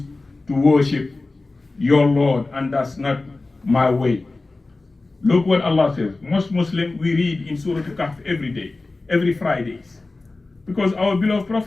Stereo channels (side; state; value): right; quieter; 3.3 dB